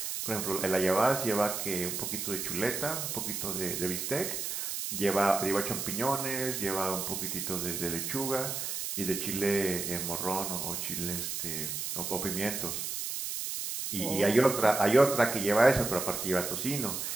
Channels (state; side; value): noise; right; hiss, 3 dB below the sound